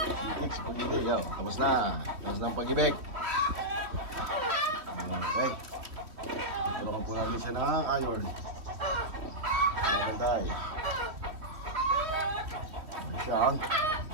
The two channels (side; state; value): left; late; 3.3 ms